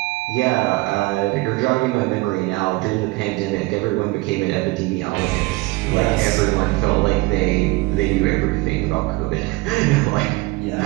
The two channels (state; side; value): quieter; left; 22.2 dB